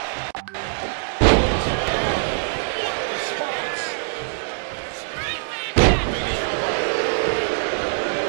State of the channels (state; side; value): silent; left; digital silence